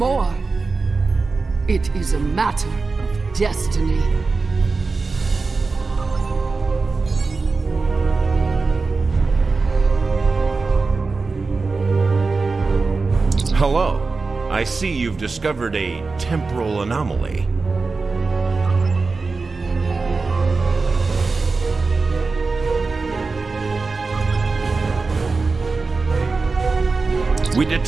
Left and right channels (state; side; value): quieter; left; 4.1 dB